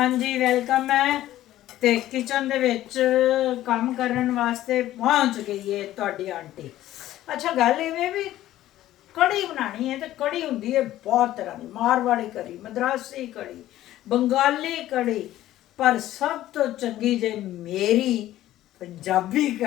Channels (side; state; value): right; quieter; 14.1 dB